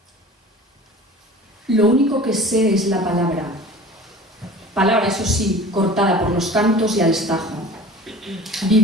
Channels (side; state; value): both; normal; correlation 0.41